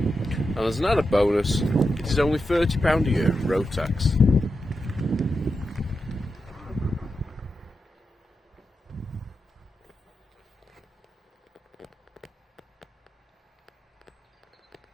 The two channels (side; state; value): both; normal; correlation 0.88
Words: as an added bonus, it is only £30 a year in road tax.